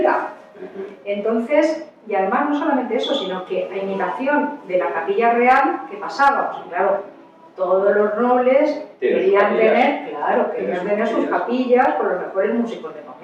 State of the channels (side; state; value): both; identical; correlation 1.00